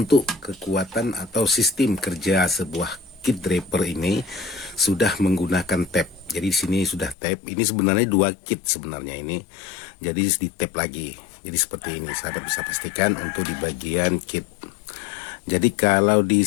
kekuatan atau sistem kerja sebuah kit draper ini sudah menggunakan tap. Jadi di sini sudah tap. Ini sebenarnya dua kit sebenarnya ini. Jadi di tap lagi. Jadi seperti ini, sahabat bisa pastikan untuk di bagian kit. Jadi kalau di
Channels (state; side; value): drops out; right; at 7.2 s